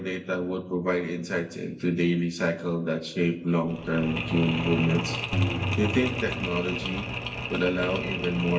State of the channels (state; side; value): identical; both; correlation 1.00